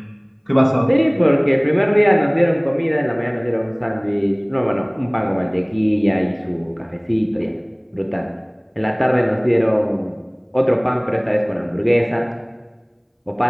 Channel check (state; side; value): identical; both; correlation 1.00